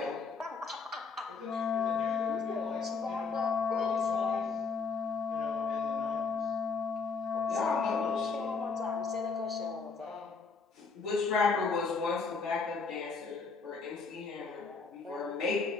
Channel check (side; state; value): right; quieter; 4.9 dB